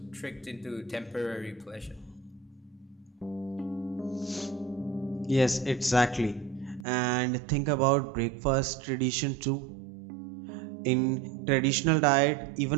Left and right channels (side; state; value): left; drops out; at 6.9 s